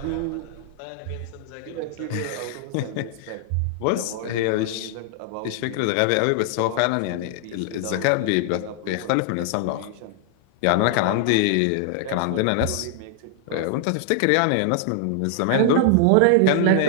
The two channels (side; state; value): both; different; correlation 0.00